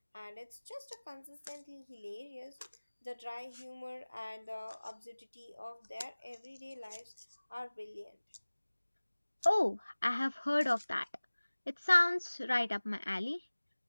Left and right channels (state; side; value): inverted; both; correlation -1.00